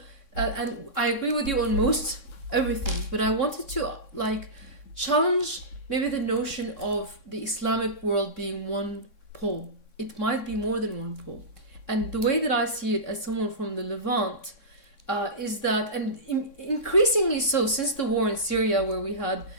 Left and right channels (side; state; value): right; late; 3.6 ms